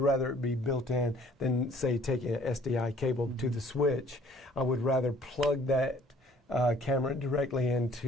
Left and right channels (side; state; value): both; normal; correlation 0.56